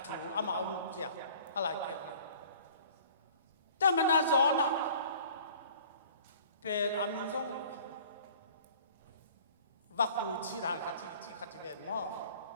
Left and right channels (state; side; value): inverted; both; correlation -0.50